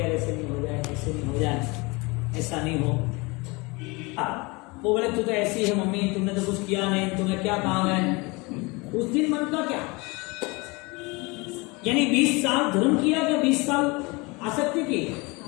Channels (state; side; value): quieter; right; 26.3 dB